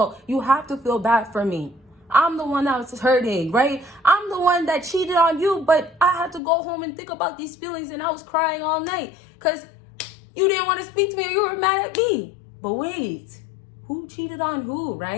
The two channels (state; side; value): drops out; right; at 6.4 s